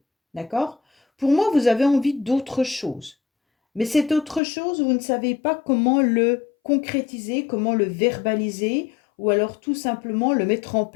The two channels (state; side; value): drops out; right; at 4.4 s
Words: D'accord? Pour moi, vous avez envie d'autre chose. Mais cette autre chose, vous ne savez pas comment le concrétiser, comment le verbaliser, ou alors tout simplement le mettre en